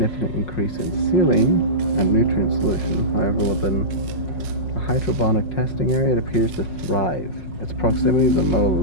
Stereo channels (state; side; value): late; right; 5.5 ms